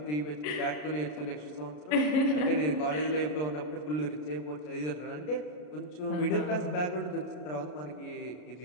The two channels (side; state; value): right; late; 33 ms